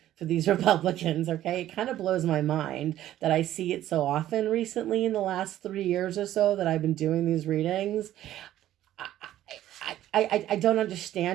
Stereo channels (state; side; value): quieter; left; 13.0 dB